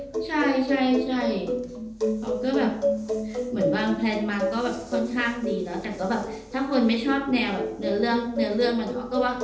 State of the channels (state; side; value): identical; both; correlation 1.00